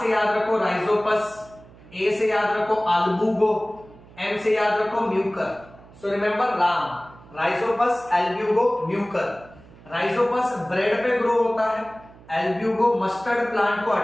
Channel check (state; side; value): noise; right; hum, 23 dB below the sound